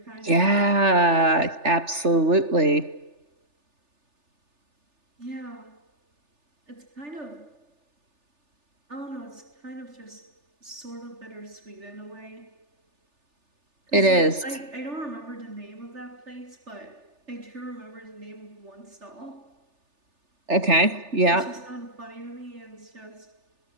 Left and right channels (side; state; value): left; late; 3.4 ms